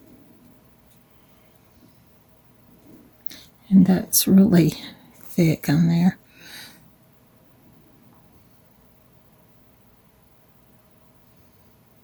And that's really thick on there.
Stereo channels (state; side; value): identical; both; correlation 1.00